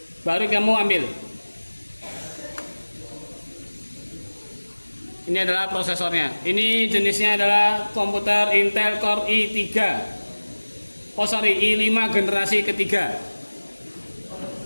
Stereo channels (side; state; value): both; inverted; correlation -1.00